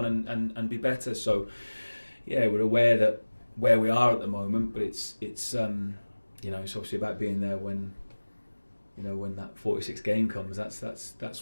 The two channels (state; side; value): inverted; both; correlation -1.00